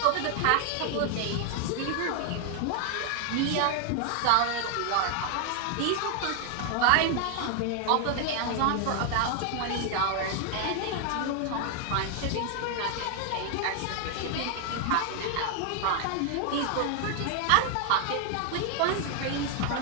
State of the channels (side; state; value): both; different; correlation 0.00